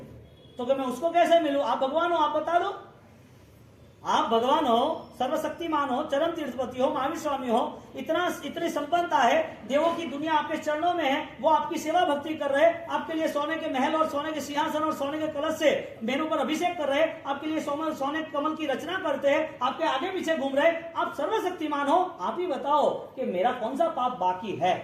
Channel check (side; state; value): both; identical; correlation 1.00